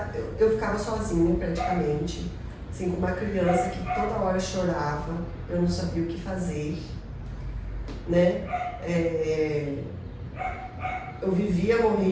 eu ficava sozinha praticamente, assim, com uma criança que toda hora chorava, eu não sabia o que fazer, né? Eu vivia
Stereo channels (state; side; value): identical; both; correlation 1.00